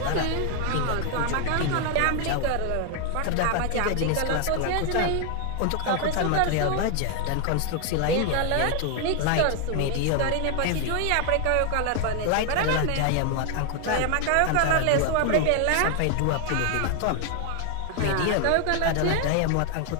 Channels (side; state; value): both; different; correlation 0.00